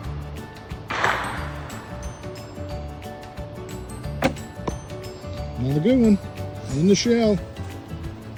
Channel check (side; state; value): both; identical; correlation 1.00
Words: Another good one. In the shell.